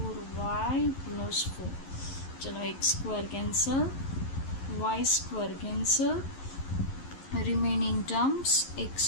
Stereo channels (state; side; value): late; right; 11 ms